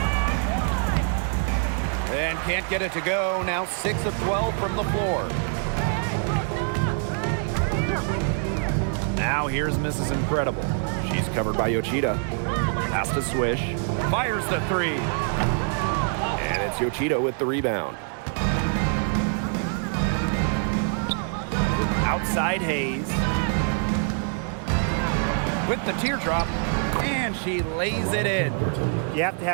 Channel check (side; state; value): left; silent; 55 dB below the other